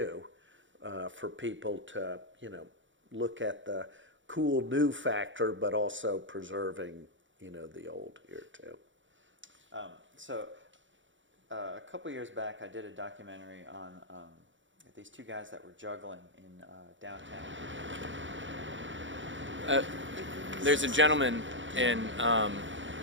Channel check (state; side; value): late; left; 0.55 ms